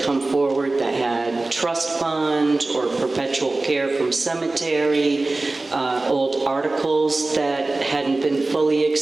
come forward that had trust fund or perpetual care from cemetery, old articles that hadn't been fully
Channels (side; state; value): left; quieter; 3.1 dB